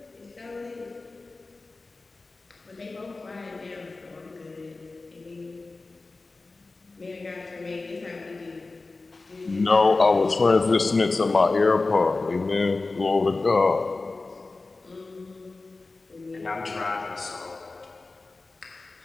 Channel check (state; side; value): quieter; right; 3.5 dB